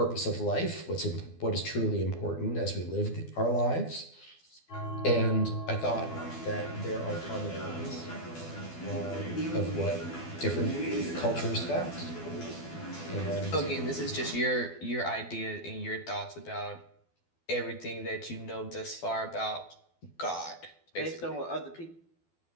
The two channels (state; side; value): late; right; 12 ms